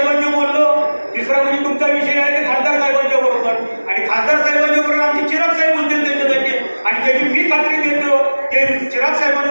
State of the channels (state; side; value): inverted; both; correlation -1.00